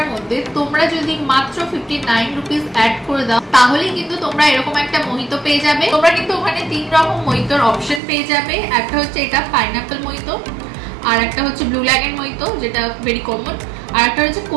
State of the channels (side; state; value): left; drops out; at 8.0 s